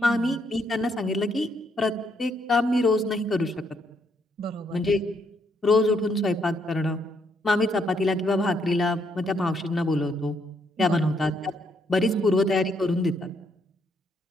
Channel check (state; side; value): normal; both; correlation 0.73